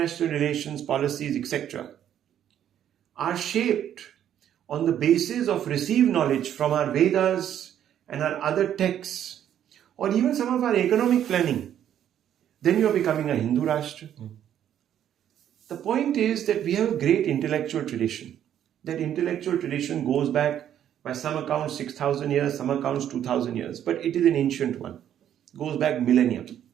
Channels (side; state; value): left; quieter; 10.3 dB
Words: relations, policies, etc., are shaped on the basis of received knowledge from our Vedas and our other texts, or even some of our economic planning, then you are becoming a Hindu Rashtra. The point is that we have a great intellectual tradition. That intellectual tradition goes back, by some accounts, 6,000 years, some accounts 2,000 years, but it is an ancient one. It goes back millennia.